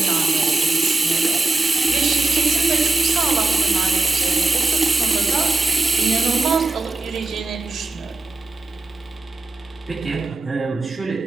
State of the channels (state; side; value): quieter; left; 3.4 dB